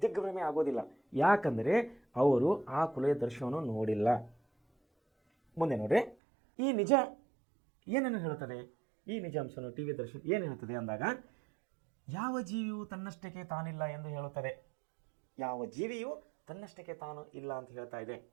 ದಿಗ್ಭ್ರಮೆ ಆಗೋದಿಲ್ಲ. ಯಾಕಂದರೆ ಅವರು ಆ ಕೊಲೆಯ ದೃಶ್ಯವನ್ನು ನೋಡಿಲ್ಲ. ಮುಂದೆ ನೋಡ್ರಿ, ಈ ನಿಜ ಏನನ್ನು ಹೇಳುತ್ತದೆ, ಈ ನಿಜಾಂಶವನ್ನು ಟಿ ವಿ ದರ್ಶನ ಏನು ಹೇಳುತ್ತದೆ ಅಂದಾಗ, ಯಾವ ಜೀವಿಯು ತನ್ನಷ್ಟಕ್ಕೆ ತಾನಿಲ್ಲ ಎಂದು ಹೇಳುತ್ತದೆ. ಯಾವ ಜೀವಿಯು ತನ್ನಷ್ಟಕ್ಕೆ ತಾನು ಇಲ್ಲ ಅಂತ ಹೇಳ್ತಾ ಇದೆ.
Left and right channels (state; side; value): drops out; left; at 6.2 s